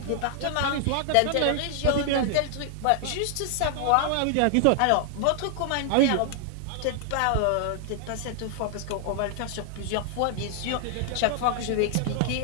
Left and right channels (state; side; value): different; both; correlation 0.00